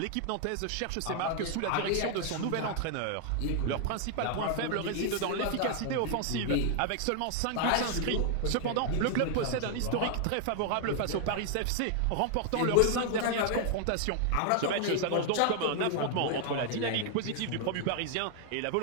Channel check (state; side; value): different; both; correlation 0.00